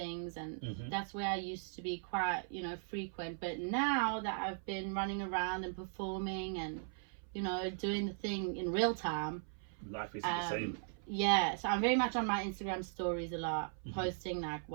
and that's where I used to be quite, you know, frequent. But now that I've been running around and performing and, you know, doing the thing in real time, Life isn't the same. yeah, so I'm very much on my Instagram stories a lot, posting like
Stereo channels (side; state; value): left; silent; 52 dB below the other